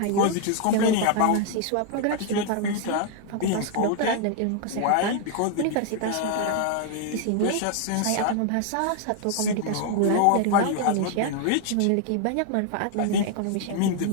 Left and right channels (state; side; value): different; both; correlation 0.00